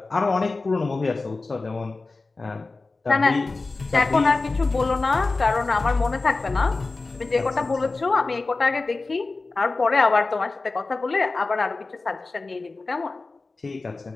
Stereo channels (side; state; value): right; quieter; 3.6 dB